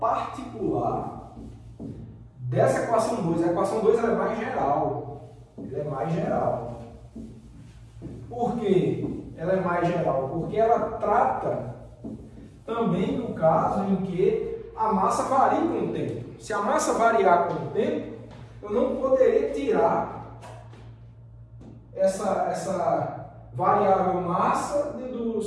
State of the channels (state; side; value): identical; both; correlation 1.00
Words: dessa equação 2. A equação 2 ela é mais geral. Ela é mais geral. Por quê? Ela é mais geral? Porque ela trata também do caso em que a massa varia com o tempo. Se a massa variar com o tempo, eu não poderia tirar essa variável massa do